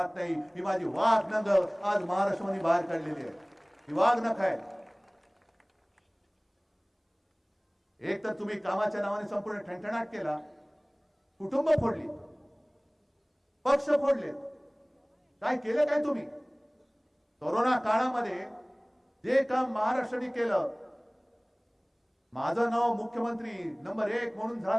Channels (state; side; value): identical; both; correlation 1.00